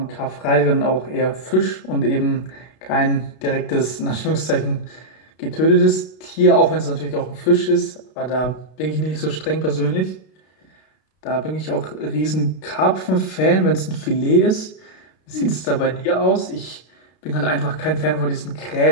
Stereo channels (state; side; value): late; right; 32 ms